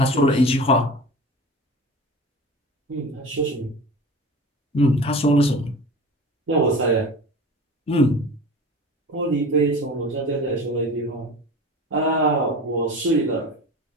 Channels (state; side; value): normal; both; correlation 0.35